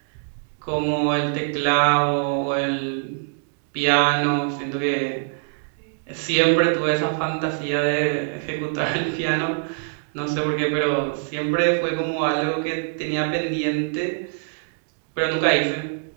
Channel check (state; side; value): silent; left; 63 dB below the other